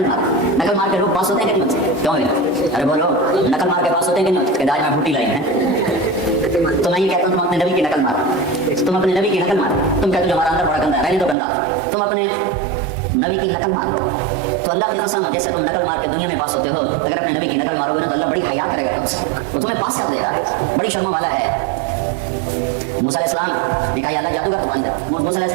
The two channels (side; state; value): left; drops out; at 11.4 s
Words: مارو۔ نقل مار کے لوگ پاس ہوتے ہیں کہ نہیں؟ کیوں ہے؟ ارے بولو، نقل مار کے پاس ہوتے ہیں کہ نہیں؟ کہ داج میں بھوٹی لائی ہے، تو میں یہ کہتا ہوں تم اپنے نبی کی نقل مارو، تم اپنے نبی کی نقل مارو۔ تم کہتے ہو ہمارا اندر بڑا گندا ہے، رہنے تو گندا، تم اپنے نبی کی نقل مار لو۔ تو اللہ کی قسم جیسے تم نقل مار کے دنیا میں پاس ہوتے ہو، اگر اپنے نبی کی نقل مارو گے نا تو اللہ بڑی حیا کرے گا تم سے، وہ تمہیں پاس کر دے گا، بڑی شرم والا ہے۔ موسیٰ علیہ السلام نے کہا یا اللہ جادوگر تو بن جا، موسیٰ علیہ